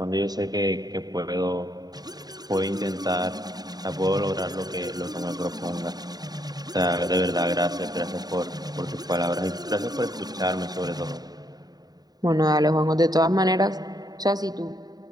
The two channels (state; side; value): late; left; 0.19 ms